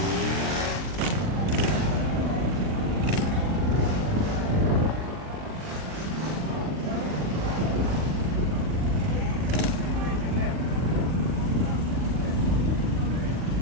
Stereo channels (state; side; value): late; left; 39 ms